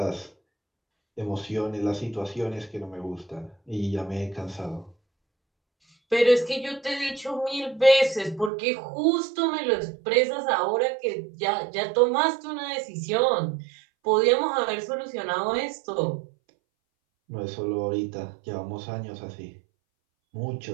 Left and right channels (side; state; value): left; drops out; at 8.5 s